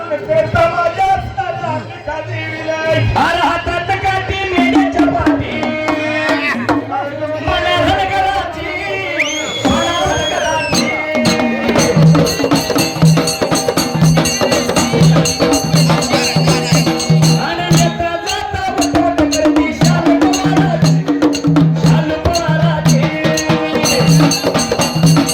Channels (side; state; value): both; identical; correlation 1.00